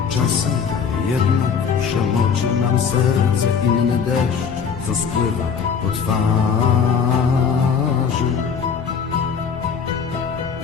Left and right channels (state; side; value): quieter; right; 6.5 dB